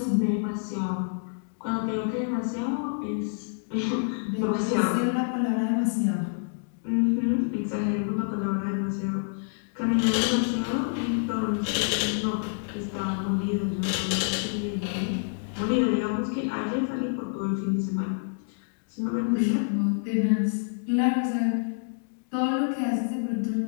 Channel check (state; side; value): silent; right; digital silence